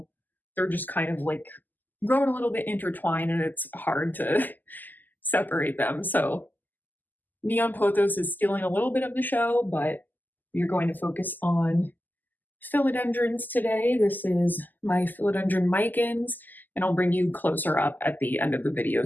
they're just kind of like growing a little bit intertwined, and it's hard to separate them. So neon pothos is stealing a little bit of the show, but we're going to focus on philodendrons today. This is my philodendron micans, and I'll bring you closer up at the end of the video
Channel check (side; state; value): right; late; 0.086 ms